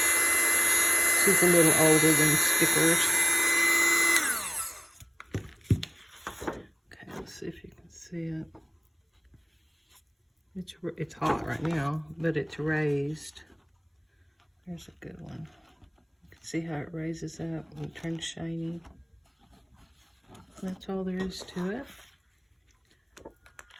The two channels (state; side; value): identical; both; correlation 1.00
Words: she's a little older than stickers. Okay, let's see if you can see it. It's hot right now, but it's raised. There's a good one. You can see how it raises up and turns shiny. That's all there is to it.